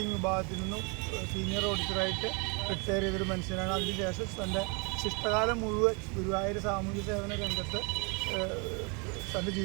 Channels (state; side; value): quieter; left; 32.3 dB